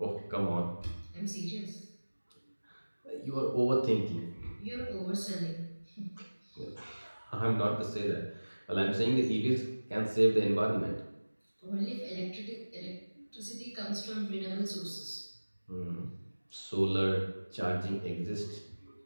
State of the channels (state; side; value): inverted; both; correlation -1.00